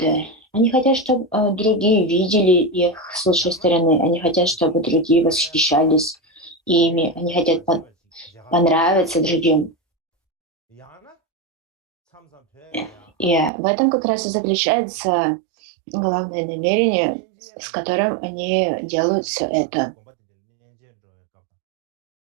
Они хотят, чтобы другие видели их с лучшей стороны. Они хотят, чтобы другие восхищались ими. Они хотят понравиться другим. И в этом как раз и заключается главное намерение, с которым они делают все это.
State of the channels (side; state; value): left; drops out; at 13.5 s